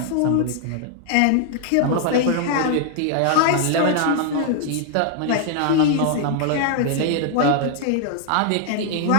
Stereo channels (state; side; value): different; both; correlation 0.00